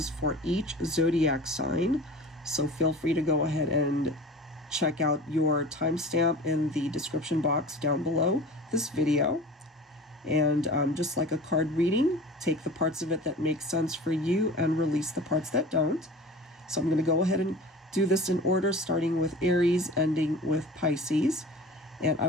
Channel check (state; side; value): normal; both; correlation 0.38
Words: for each zodiac sign. So feel free to go ahead and check out your timestamp in the description box down below this video. And just like a card reading, take the parts of it that make sense for you and release the parts that don't. So I'm going to go ahead and do this in order, starting with Aries, ending with Pisces. And I